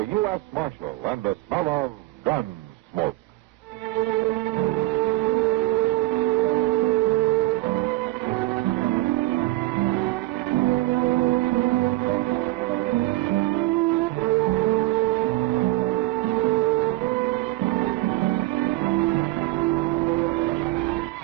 U.S. Marshal and the smell of Gunsmoke.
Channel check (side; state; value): left; quieter; 18.4 dB